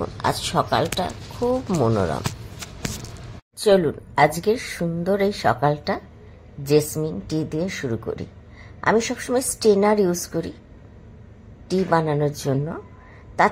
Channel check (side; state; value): both; identical; correlation 1.00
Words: আজ সকালটা খুব মনোরম। চলুন আজকের সুন্দর এই সকালটা জেসমিন টি দিয়ে শুরু করি। আমি সবসময় স্টেনার ইউজ করি টি বানানোর জন্য।